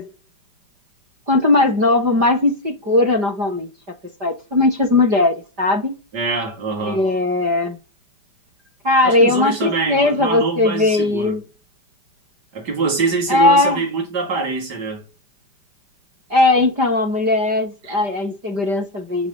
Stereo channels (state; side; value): late; left; 5.1 ms